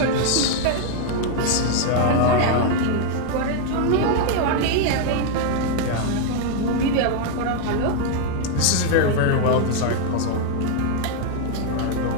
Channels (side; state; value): both; different; correlation 0.00